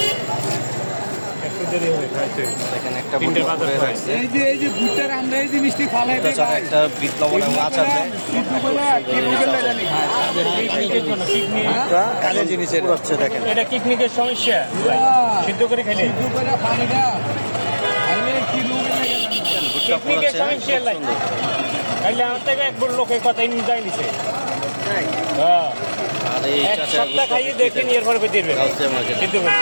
দেখেন একটা ভুট্টা হয়ে রাখছে। এই যে ভুট্টার আমরা এই জিনিসটি খালাই ভুট্টা ছাড়া একটা বিপ্লব মাছ আছে। কাজের জিনিসের হচ্ছে, দেখেন এটা কিডনির সমস্যা, সিদ্ধ করে খেলে পানিটা ভুট্টা কিডনির পড়াচ্ছে, সমস্যা খুব নাই। সুন্দর। তাইলে আমার থেকে একবার লোকের কথাই নিয়ে নিছে। আর এই এক চাচা সপ্তাহ খাইয়ে দেখে নিয়ে এরপর দিবে গাউচিয়া মার্কেট। সিদ্ধ করে।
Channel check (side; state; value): both; inverted; correlation -1.00